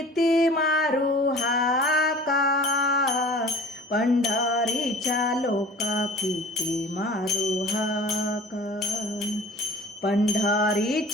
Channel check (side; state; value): both; normal; correlation 0.44